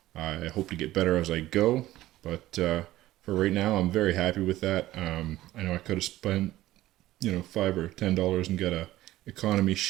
I hope to get better as I go, but for right now, I'm very happy with that. I know I could have spent, you know, $5 or $10 and got a economy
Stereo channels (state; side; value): quieter; left; 15.6 dB